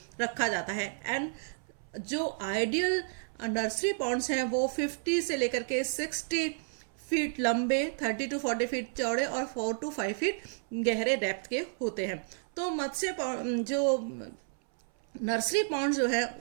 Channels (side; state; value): left; silent; 57 dB below the other